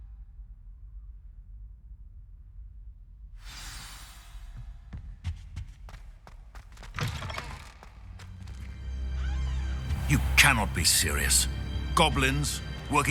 You cannot be serious. Goblins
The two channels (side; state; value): both; identical; correlation 1.00